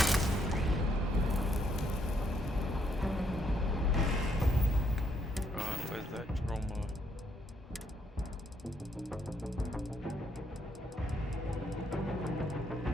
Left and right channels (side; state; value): both; normal; correlation 0.74